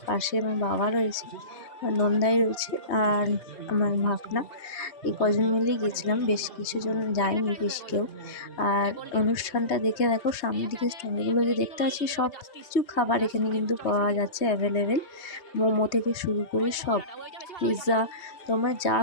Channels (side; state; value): right; late; 3.3 ms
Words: পাশে আমার বাবা রয়েছে, আমার নন্দাই রয়েছে, আর আমার ভাগনা। এই কজন মিলেই গেছিলাম, বেশ কিছুজন যায়নি, বেশি কেউ। আর অনুষ্ঠানটা দেখে দেখো সামনের দিকে স্টলগুলো যে দেখতে পাচ্ছি, সব কিছু খাবার এখানে কিন্তু পাওয়া যাচ্ছে অ্যাভেলেবেল। মোমো থেকে শুরু করে সব, পিৎজা, তোমরা যা